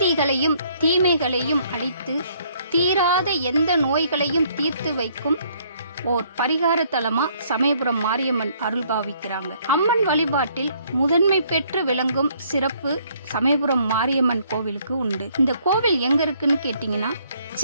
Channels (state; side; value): inverted; both; correlation -0.65